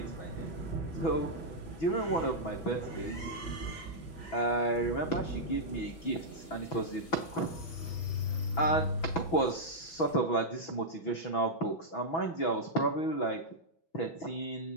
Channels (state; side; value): late; right; 6.1 ms